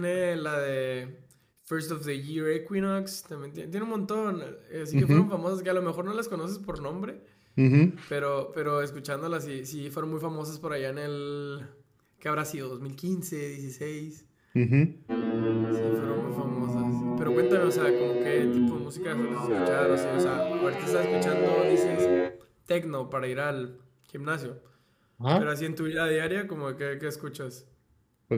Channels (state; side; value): identical; both; correlation 1.00